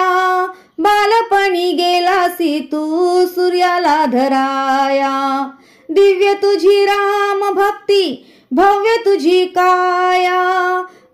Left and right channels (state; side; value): identical; both; correlation 1.00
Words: बालपणी गेलासी तू सूर्याला धराया। दिव्य तुझी राम भक्ती भव्य तुझी काया,